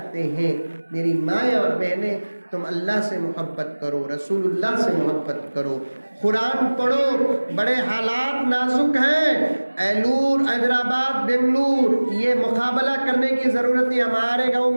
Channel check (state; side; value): inverted; both; correlation -1.00